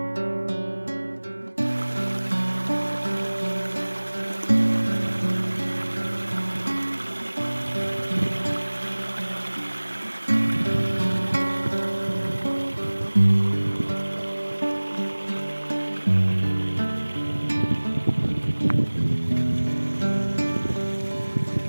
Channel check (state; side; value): inverted; both; correlation -1.00